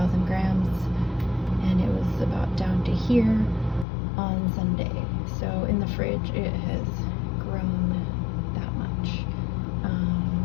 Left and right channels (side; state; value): right; drops out; at 3.9 s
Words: grams, and it was about down to here on Sunday. So in the fridge it has grown that much.